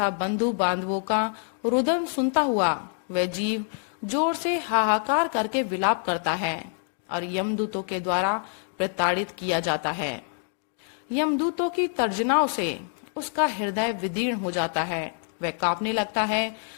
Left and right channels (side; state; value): right; silent; 61 dB below the other